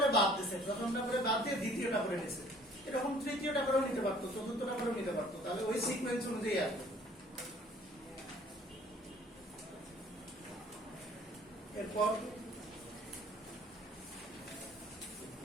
বাদ দিছে, প্রথমটা করে বাদ দিয়ে দ্বিতীয়টা করে নিছে, এরকম তৃতীয়টা করেও নিতে পারতো, চতুর্থটা করেও নিতে পারতো, তাহলে ওই সিকোয়েন্স অনুযায়ী আসবে। এরপর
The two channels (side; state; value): both; normal; correlation 0.55